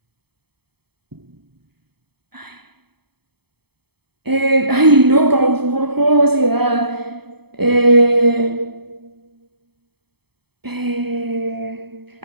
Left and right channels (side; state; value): left; late; 0.97 ms